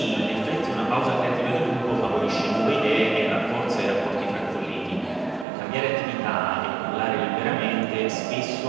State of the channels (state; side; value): drops out; left; at 5.5 s